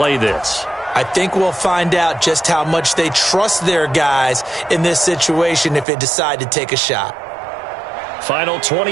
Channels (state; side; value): drops out; left; at 5.9 s